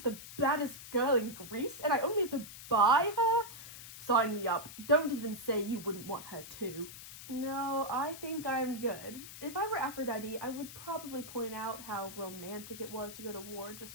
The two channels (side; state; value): left; noise; hiss, 13 dB below the sound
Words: the baddest girl in Greece and I only have to buy her? Sign me up. Don't even say you wouldn't want her too. No, I think I'm good. If I were Aphrodite, I would probably point out how romantic it was to go to war